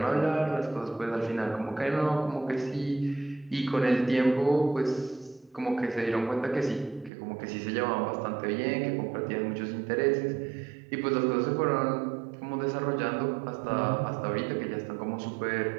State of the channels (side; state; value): left; drops out; at 7.1 s